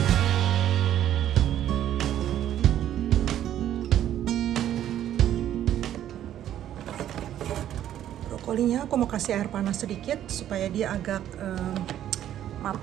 Brokolinya aku mau kasih air panas sedikit supaya dia agak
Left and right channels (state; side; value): quieter; left; 11.4 dB